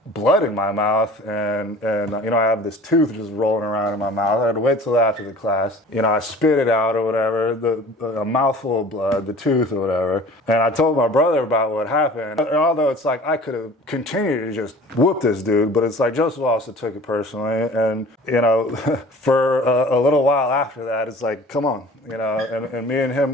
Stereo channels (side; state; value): both; normal; correlation 0.45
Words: blood in my mouth, and I have this tooth just rolling around in my mouth. I had to wait till after the class. I spit it out or whatever, a mouthful of blood, the tooth or whatever. And I told my brother about what happened. And although it's I could have continued to just whoop this dude, but it's Joseph also took it personally. And, for a little while after that, it's come on, and me and